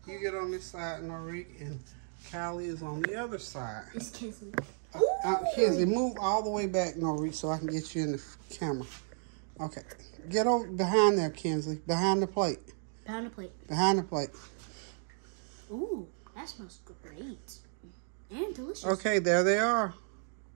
on this side, Norique, and Callie is on the other side. It's Kinsley. Kinsley, move all the way back, Norique, so I can get you in the camera. Okay, get over behind there, Kinsley. Behind the plate. Behind the plate. Behind the plate. Ooh, that smells great and delicious. Okay, there they are.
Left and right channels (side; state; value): left; silent; 55 dB below the other